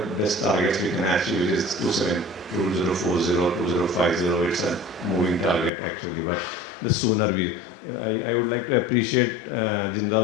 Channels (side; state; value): right; drops out; at 5.7 s